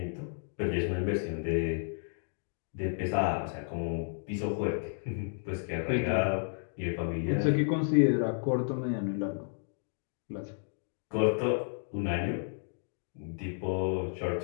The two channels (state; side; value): silent; right; digital silence